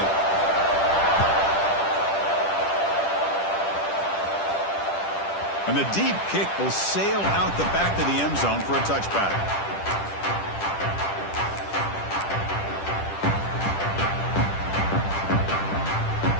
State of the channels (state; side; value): late; right; 10 ms